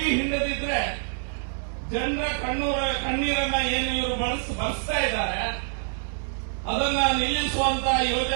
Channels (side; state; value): left; silent; 57 dB below the other